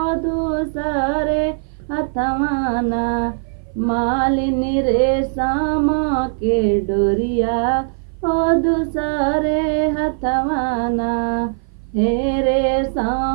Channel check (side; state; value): left; silent; 58 dB below the other